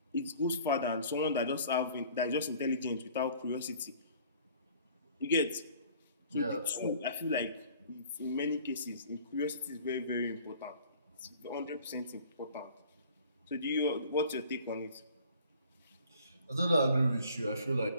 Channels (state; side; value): inverted; both; correlation -0.52